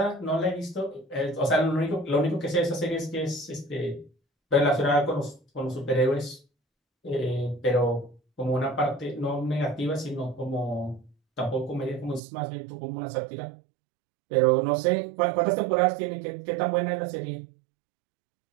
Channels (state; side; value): drops out; left; at 12.2 s